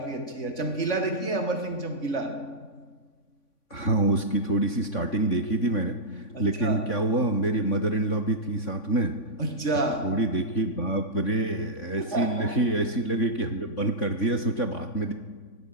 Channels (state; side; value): late; right; 3.5 ms